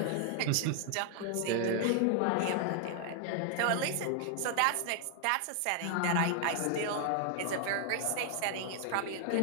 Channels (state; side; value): different; both; correlation 0.00